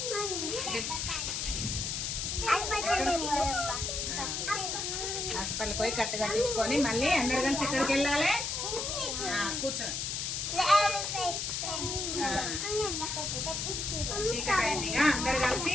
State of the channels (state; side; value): noise; left; hiss, 2 dB below the sound